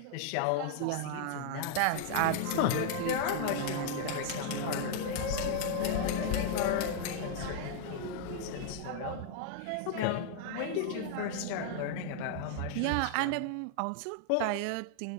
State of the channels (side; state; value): both; different; correlation 0.00